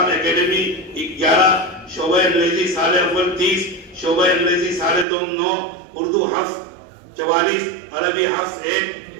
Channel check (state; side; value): drops out; left; at 5.1 s